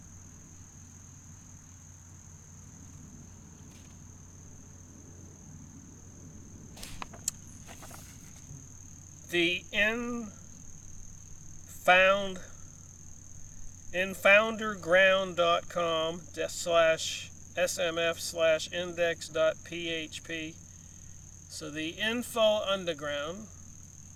The infounderground.com/smf/index.php. So the Info Underground,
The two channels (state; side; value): identical; both; correlation 1.00